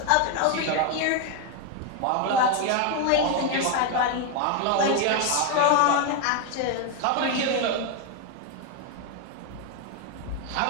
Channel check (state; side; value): different; both; correlation 0.01